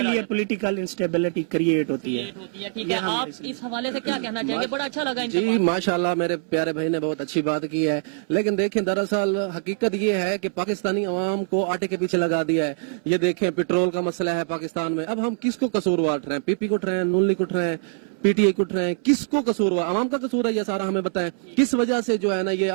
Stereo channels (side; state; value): left; silent; 63 dB below the other